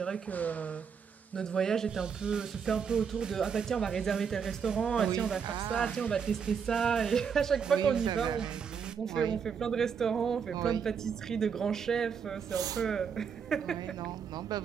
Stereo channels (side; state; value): left; quieter; 6.8 dB